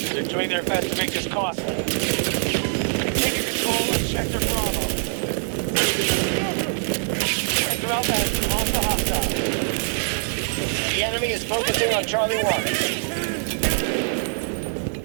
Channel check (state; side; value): silent; left; 63 dB below the other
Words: They're doing their best to make this costly. Continue control of Sector Bravo. Sector Alpha has been lost to hostile. The enemy is focusing on Charlie 1.